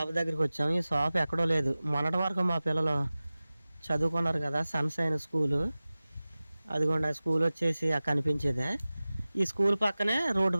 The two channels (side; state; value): both; inverted; correlation -0.97